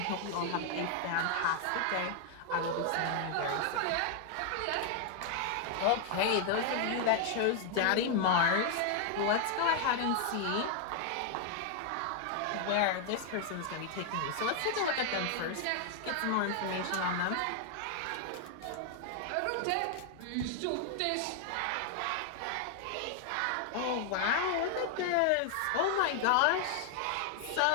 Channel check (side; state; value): both; different; correlation 0.00